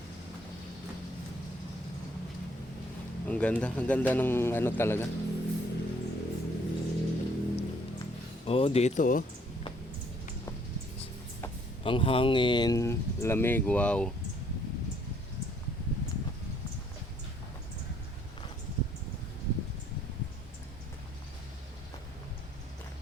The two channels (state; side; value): normal; both; correlation 0.64